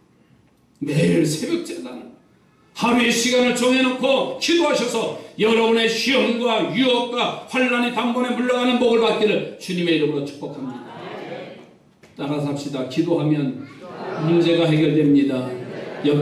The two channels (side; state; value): both; identical; correlation 1.00